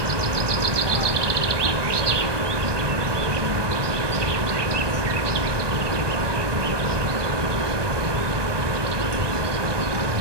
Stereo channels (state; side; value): late; left; 1.2 ms